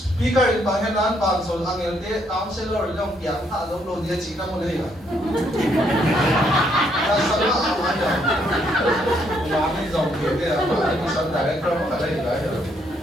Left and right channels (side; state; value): both; normal; correlation 0.72